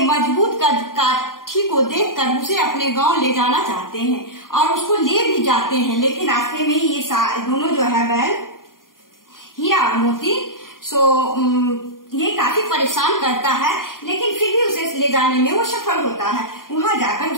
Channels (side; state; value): right; late; 0.91 ms